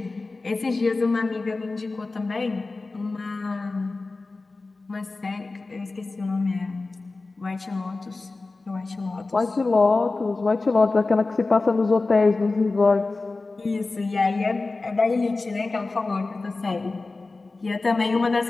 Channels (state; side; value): quieter; right; 3.5 dB